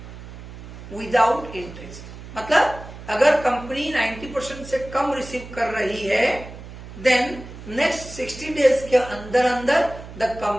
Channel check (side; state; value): right; noise; hum, 14 dB below the sound